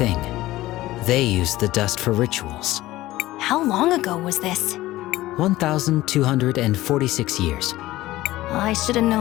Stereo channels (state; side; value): quieter; right; 16.8 dB